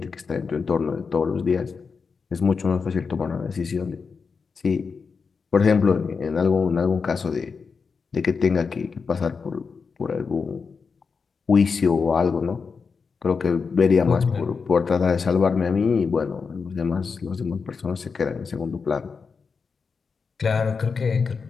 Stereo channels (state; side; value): quieter; right; 5.2 dB